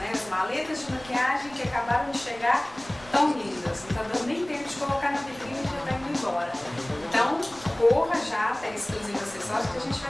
As maletas de maquiagem que acabaram de chegar tão lindas, não está dando nem tempo de colocar na vitrine e já está indo embora. Então, corra já até Exclusiva Acessórios que a gente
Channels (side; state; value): right; noise; rumble, 22 dB below the sound